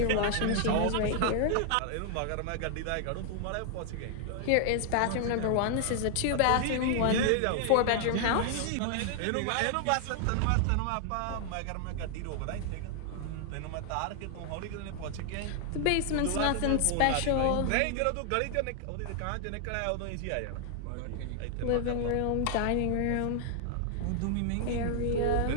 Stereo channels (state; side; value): different; both; correlation 0.00